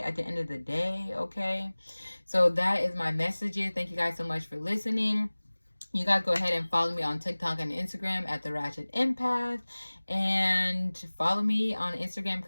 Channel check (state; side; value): inverted; both; correlation -1.00